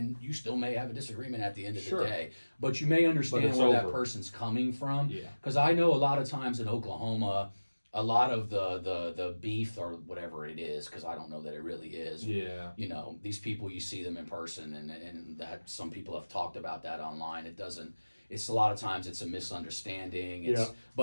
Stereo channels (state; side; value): inverted; both; correlation -1.00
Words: you still may have a disagreement at the end of the day, but you may understand where that person's coming from. Yeah. Because I know a lot of times in Oklahoma, a lot of the beef or whatever it is, because I don't know that it really is. Yeah. You know, these people, you see them in person, and that some people have talked about that online. It doesn't. It's a lot of times it's a misunderstanding.